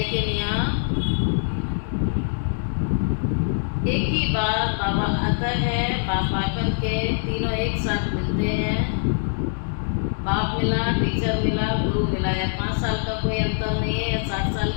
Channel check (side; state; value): right; silent; digital silence